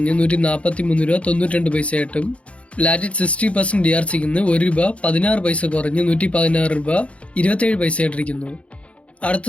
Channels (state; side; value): late; right; 0.062 ms